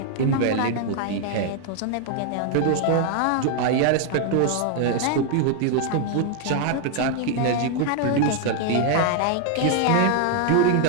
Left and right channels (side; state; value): both; different; correlation 0.00